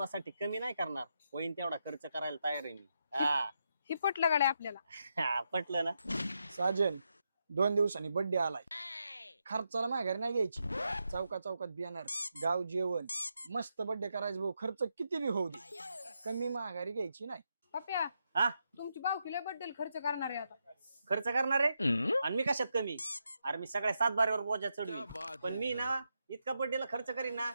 कमी नाही करणार. होईन तेवढा खर्च करायला तयार आहे मी. ही पटलं गाड्या आपल्याला. पटलं ना. साजन 2 दिवसांनी बर्थडे आलाय. खर्चाला माघारी नाही घ्यायची. चौकात बियाणार, गाव जेवण, मस्त बर्थडे करायचं भाऊ. खर्च किती बी होऊ दे, कमी माघारी घ्यायची नाही. पप्या हा तुमची बावकीला बद्दल खर्च करणार आहे आता. खर्च करणार आहे आणि मी कशात कमी. अरे मी सगळ्या 7 बारीवर बोजा चढवी. पण मी ना इतका बर्थडेला खर्च करीन ना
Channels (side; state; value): both; inverted; correlation -0.83